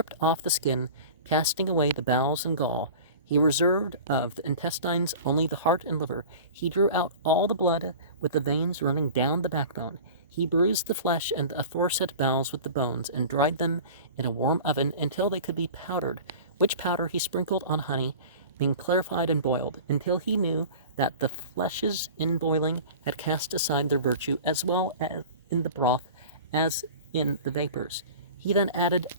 off the skin, casting away the bowels and gall. He reserved of the intestines only the heart and liver. He drew out all the blood with the veins running down the backbone. He bruised the flesh and the aforesaid bowels with the bones, and dried them in a warm oven until they could be powdered, which powder he sprinkled on honey, being clarified and boiled, until he knew that the fleshes in boiling had cast aside their virtue, as well as in the broth as in the vapors. He then added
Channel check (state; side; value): inverted; both; correlation -0.38